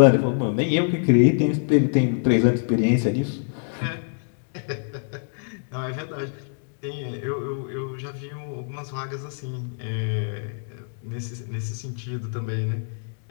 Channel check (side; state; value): right; silent; digital silence